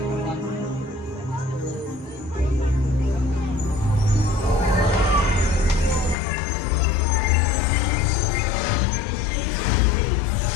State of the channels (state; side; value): drops out; right; at 6.2 s